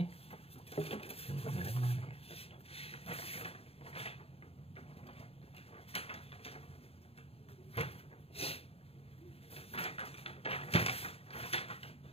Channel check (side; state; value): right; late; 0.28 ms